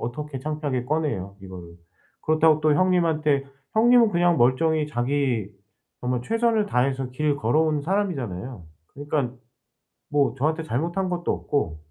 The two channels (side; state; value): both; identical; correlation 1.00